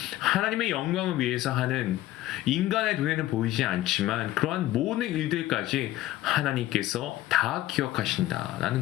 하나님의 영광을 위해서 하는, 인간의 눈에는 보이지 않지만 그러한 모든 일들까지 하나님께서 다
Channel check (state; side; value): quieter; right; 15.0 dB